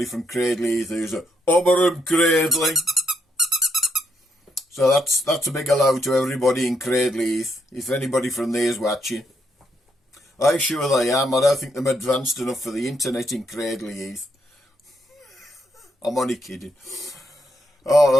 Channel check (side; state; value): both; normal; correlation 0.76